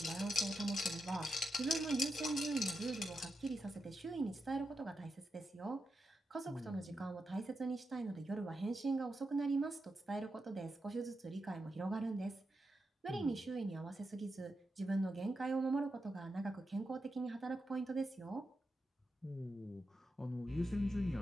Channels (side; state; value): both; normal; correlation 0.87